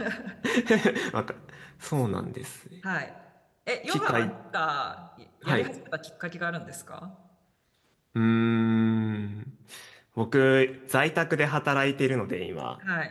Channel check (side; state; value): both; identical; correlation 1.00